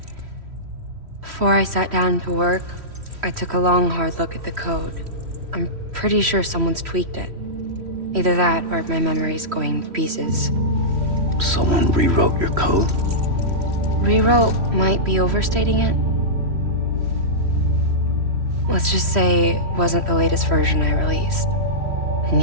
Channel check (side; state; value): left; late; 3.1 ms